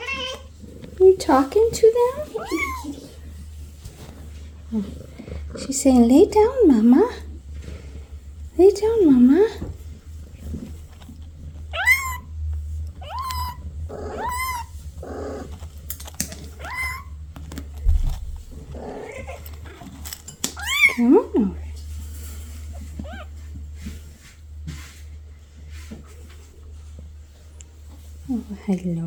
Are you talking to them? Oh, she's saying, lay down, Mama. Lay down, Mama. Come on over. Oh,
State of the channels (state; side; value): identical; both; correlation 1.00